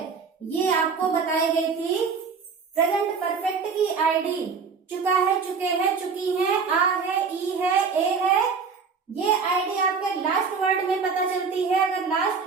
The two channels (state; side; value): quieter; left; 5.5 dB